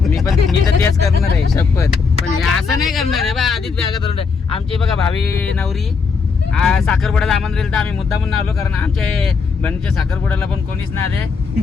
मी तर तेच करणार आहे शपथ. पण हे असं नाही करणार आहे बा. आधीच बॅगा धरून ठेव. आमची बघा भावी नवरी साखरपुड्याला आमंत्रण दिलं तर आम्ही मुद्दा म्हणून आलो कारण आमच्या बहिणीच्या साखरपुड्याला पण कोणीच नाही आले.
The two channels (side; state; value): right; quieter; 5.1 dB